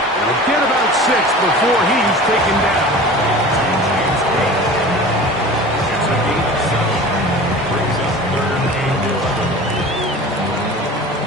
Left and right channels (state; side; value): normal; both; correlation 0.38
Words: We'll get about 6 before he's taken down.